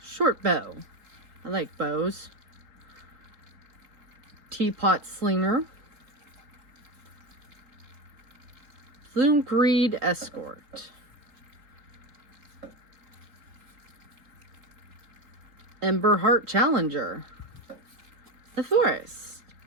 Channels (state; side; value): late; left; 3.8 ms